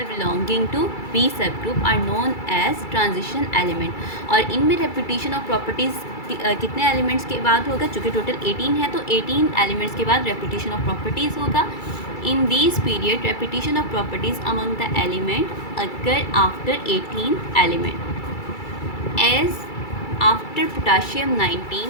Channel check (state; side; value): late; right; 2.3 ms